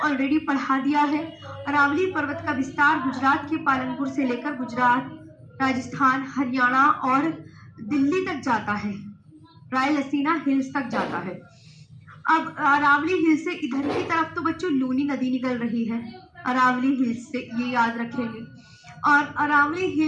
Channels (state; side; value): identical; both; correlation 1.00